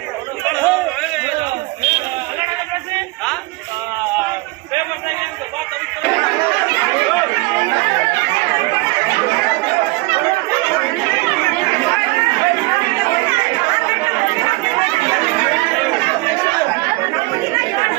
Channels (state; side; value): quieter; left; 23.2 dB